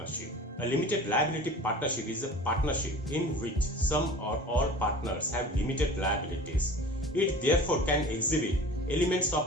A limited liability partnership is a partnership in which some or all partners have limited liabilities. It therefore can exhibit elements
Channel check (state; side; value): normal; both; correlation 0.40